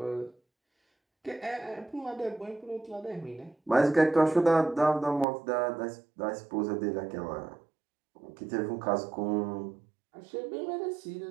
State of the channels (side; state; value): left; drops out; at 5.2 s